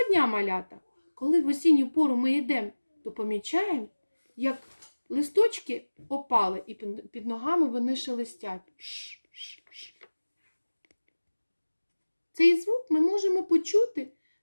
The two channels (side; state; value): both; inverted; correlation -1.00